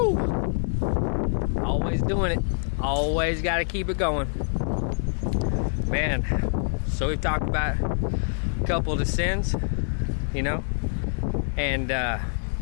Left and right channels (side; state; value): right; silent; digital silence